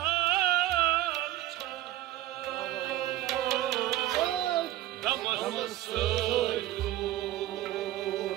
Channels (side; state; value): left; quieter; 14.9 dB